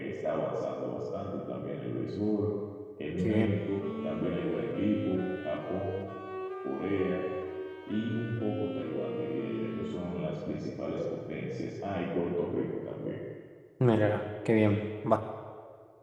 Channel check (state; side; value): identical; both; correlation 1.00